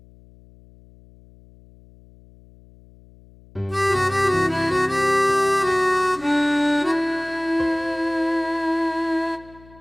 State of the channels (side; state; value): left; noise; hum, 25 dB below the sound